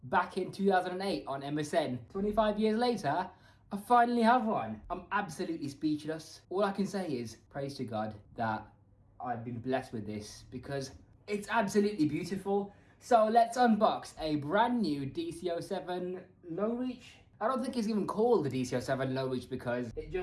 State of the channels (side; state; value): both; identical; correlation 1.00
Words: back in 2008 on MSN. 25 years later, I finally have one. I'm absolutely speechless. All I can say is praise to God that I've been blessed with this because it's absolutely beautiful. So let's unbox a brand new DC07 low reach. I don't think it's even called the DC07 low reach because it